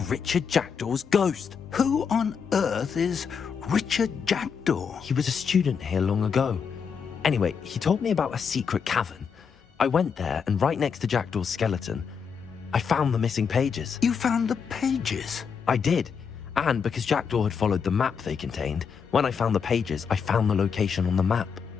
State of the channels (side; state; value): right; quieter; 6.4 dB